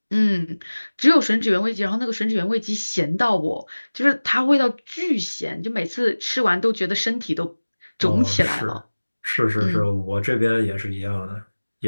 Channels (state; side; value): inverted; both; correlation -1.00